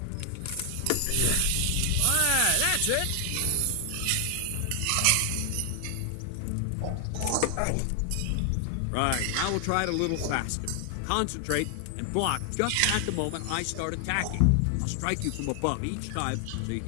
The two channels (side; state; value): both; different; correlation 0.00